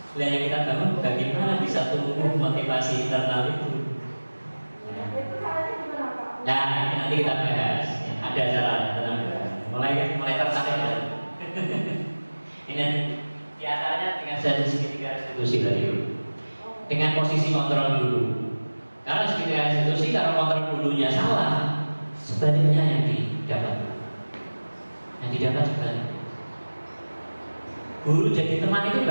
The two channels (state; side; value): inverted; both; correlation -1.00